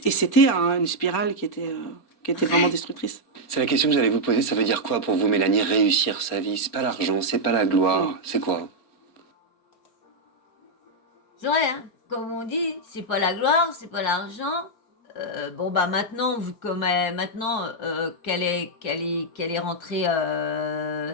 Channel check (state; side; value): late; right; 4.3 ms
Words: une spirale qui était vraiment destructrice. C'est la question que j'allais vous poser. Ça veut dire quoi pour vous, Mélanie, réussir sa vie? C'est pas l'argent, c'est pas la gloire, c'est quoi? C'est vrai, hein, comme on dit, c'est pas la gloire, c'est pas l'argent. Bon bah maintenant, vu comme maintenant qu'elle est rentrée,